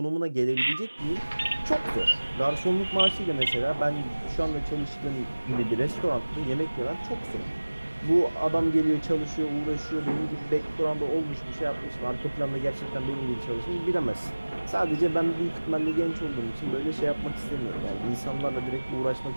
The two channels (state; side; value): inverted; both; correlation -1.00